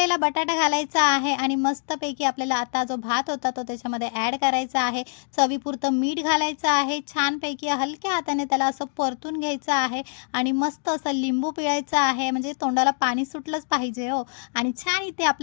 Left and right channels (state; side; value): silent; right; 62 dB below the other